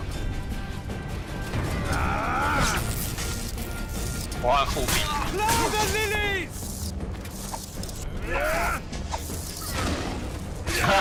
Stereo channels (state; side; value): identical; both; correlation 1.00